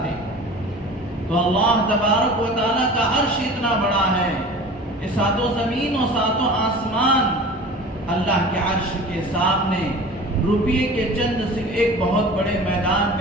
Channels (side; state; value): both; normal; correlation 0.39